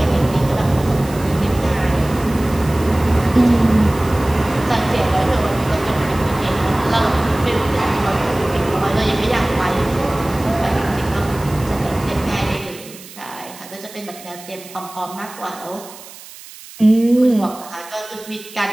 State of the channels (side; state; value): right; noise; hiss, 18 dB below the sound